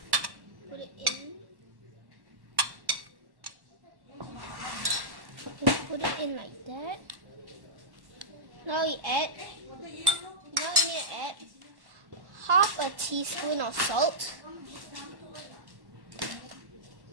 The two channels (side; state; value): left; late; 1.1 ms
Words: Put it in. Just put it in like that. Now we need to add half a teaspoon of salt.